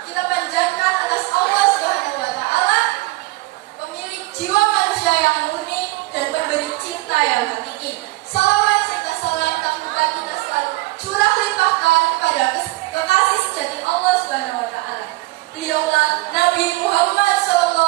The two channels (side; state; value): left; quieter; 21.2 dB